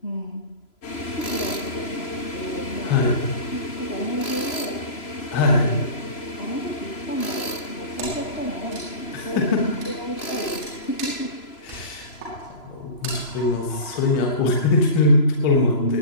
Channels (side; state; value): right; late; 3.0 ms